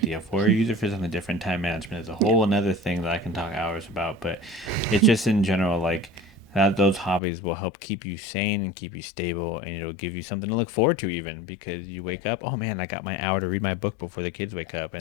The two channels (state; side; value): drops out; right; at 7.2 s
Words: for, or use it for something different. Time management is a whole another thing that I can talk hours about. But it's just in general, like those hobbies will help keep you sane and keep you stable, and it'll give you something to look forward to, even because you wake up. Oh man, I got my hour to read my book before the kids wake up.